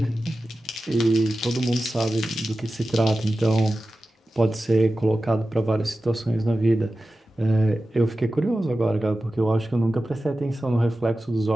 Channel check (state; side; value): normal; both; correlation 0.94